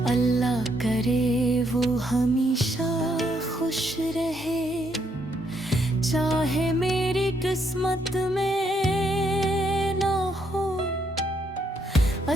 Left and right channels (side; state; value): both; normal; correlation 0.74